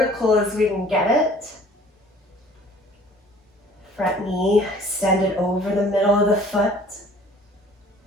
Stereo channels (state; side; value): normal; both; correlation 0.52